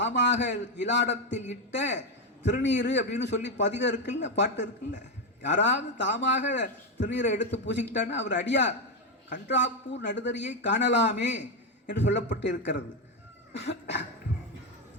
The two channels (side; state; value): both; normal; correlation 0.07